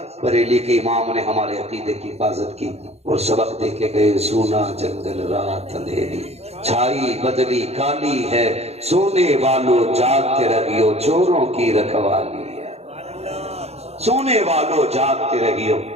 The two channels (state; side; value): late; left; 0.30 ms